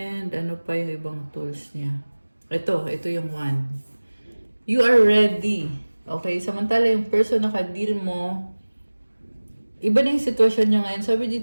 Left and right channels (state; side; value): inverted; both; correlation -1.00